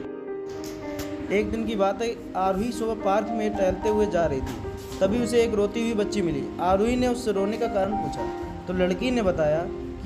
एक दिन की बात है, आरोही सुबह पार्क में टहलते हुए जा रही थी। तभी उसे एक रोती हुई बच्ची मिली। आरोही ने उससे रोने का कारण पूछा तो लड़की ने बताया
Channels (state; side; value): identical; both; correlation 1.00